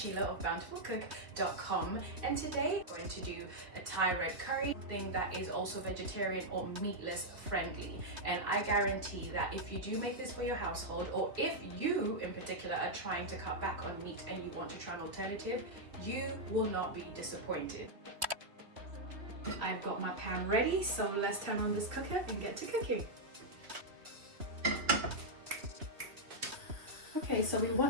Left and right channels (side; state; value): left; late; 3.2 ms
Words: of bountifulcook.com, and today I'm going to do a Thai red curry thing that is also vegetarian or meatless friendly. And I guarantee that if you do make this for your household, or if you in particular are trying to cut back on meat and you want to try an alternative, you will not be disappointed. I've got my pan ready, so let's turn on this cooker and get to cooking. Okay, so we